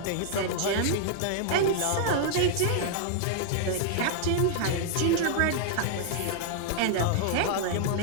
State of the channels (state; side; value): different; both; correlation -0.01